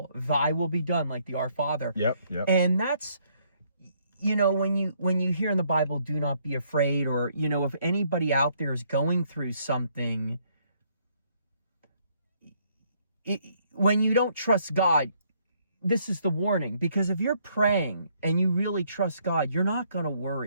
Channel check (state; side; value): inverted; both; correlation -0.69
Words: Thy will be done, like the Our Father. Yep. And that's, you know, when you hear in the Bible, do not be afraid, or, you know, if anybody out there is going through something, when you don't trust God, this is the warning. Because if you're praying and you really trust God, you're not going to